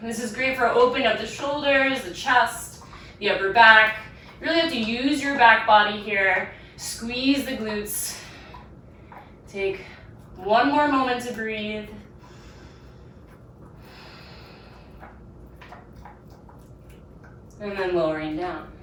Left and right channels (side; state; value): both; identical; correlation 1.00